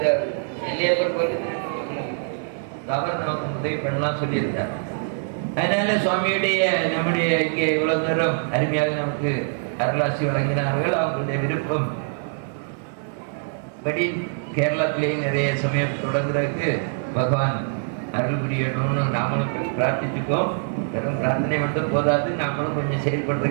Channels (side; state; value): left; silent; 63 dB below the other